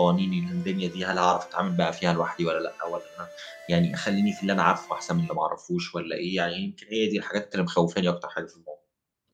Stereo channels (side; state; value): both; identical; correlation 1.00